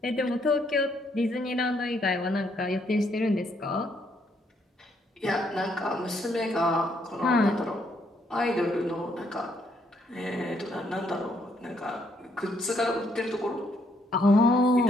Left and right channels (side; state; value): both; normal; correlation 0.72